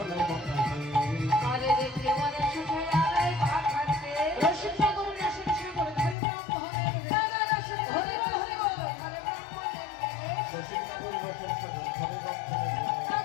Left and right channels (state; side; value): drops out; right; at 6.2 s